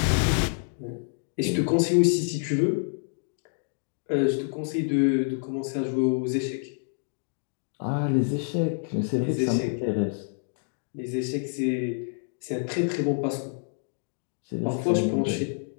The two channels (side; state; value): right; silent; digital silence